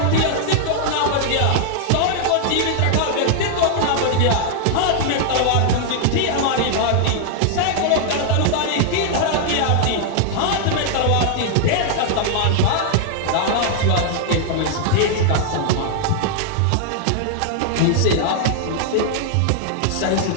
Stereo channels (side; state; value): both; different; correlation 0.00